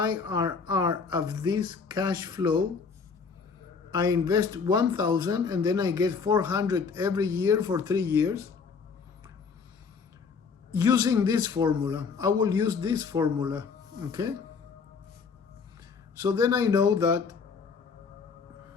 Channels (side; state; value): right; quieter; 5.4 dB